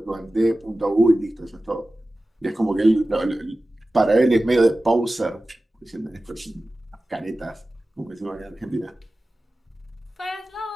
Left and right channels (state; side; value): normal; both; correlation 0.96